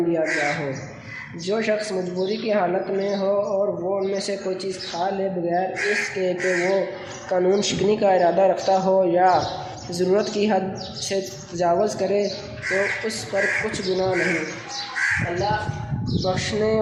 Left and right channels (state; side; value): identical; both; correlation 1.00